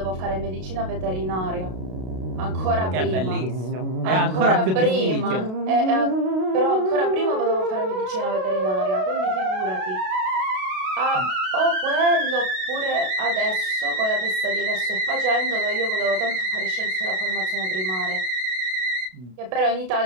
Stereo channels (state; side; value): late; left; 32 ms